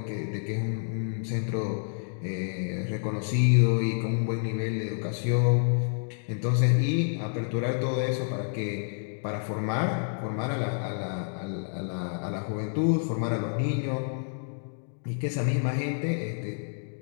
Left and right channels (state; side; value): silent; right; digital silence